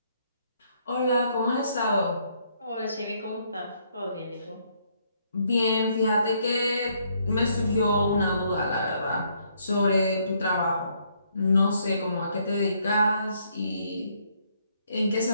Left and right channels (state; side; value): inverted; both; correlation -0.70